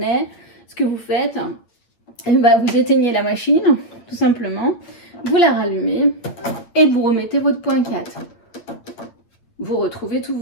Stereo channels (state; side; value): late; right; 8.8 ms